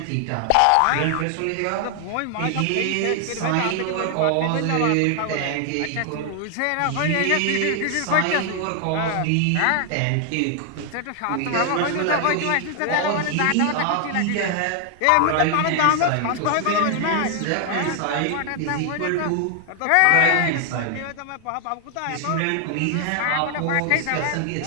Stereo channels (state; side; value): different; both; correlation 0.00